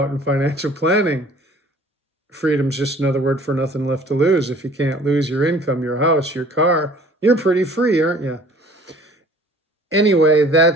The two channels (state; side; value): normal; both; correlation 0.51